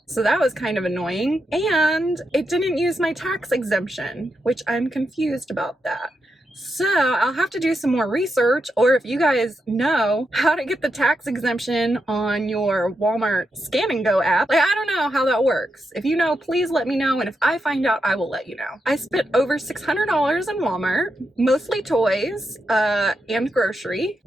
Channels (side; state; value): both; normal; correlation 0.84